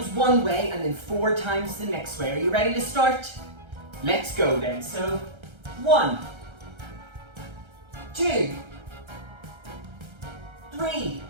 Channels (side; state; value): left; late; 1.3 ms